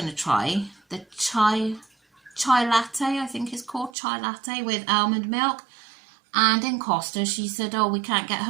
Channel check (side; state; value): left; drops out; at 3.9 s